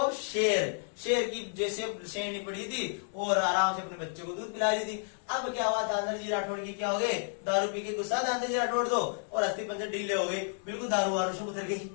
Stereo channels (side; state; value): right; silent; 57 dB below the other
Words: शेर। शेर की जैसे शेरनी पड़ी थी और आराम से अपने बच्चे को दूध पिला रही थी। अब क्या हुआ? दानदरजी राठौड़ की क्या हो गए? दारू पी के गुस्सा दानदरजी राठौड़ दो, और अस्थि पंजर ढीले हो गए, बिल्कुल दारू वारू से उतर गई।